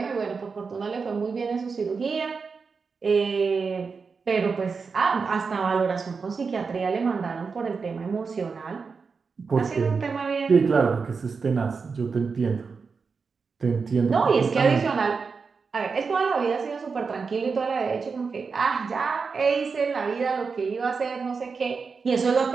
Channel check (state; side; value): quieter; left; 5.1 dB